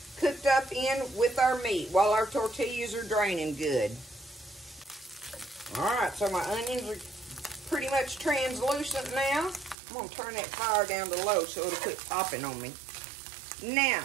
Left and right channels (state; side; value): drops out; left; at 9.8 s